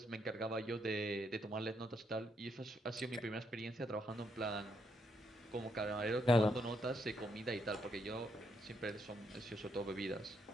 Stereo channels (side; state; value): both; normal; correlation 0.77